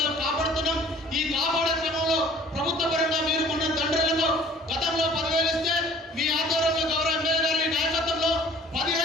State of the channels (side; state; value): both; normal; correlation 0.52